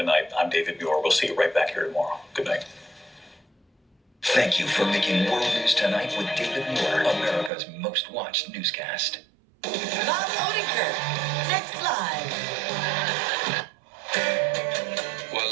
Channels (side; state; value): left; drops out; at 7.5 s